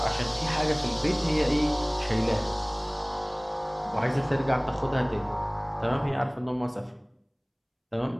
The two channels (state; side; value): identical; both; correlation 1.00